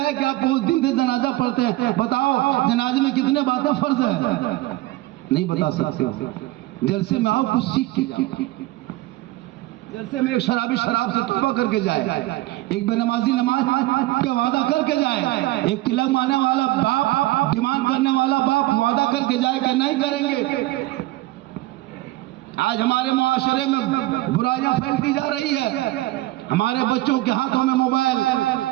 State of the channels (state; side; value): quieter; left; 18.0 dB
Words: कि आप उस दिन से जनाजा पढ़ते हैं, बताओ जनाजे में कितने बातें फर्ज है, नहीं बता सकते। जलसे में आओ, कुछ सीख के जाओ। जलसे में एक शराबी शराब से तौबा करके जाए, एक बेनमाजी नमाज का वादा करके जाए, एक तिलक मारने वाला बाप, डिमांड करने वाला बाप वादा करके जाए कि नहीं करेंगे। आज हमारे मुआशरे में बुराइयां फैलती जा रही है। हमारे बच्चों के हाथों में मोबाइल,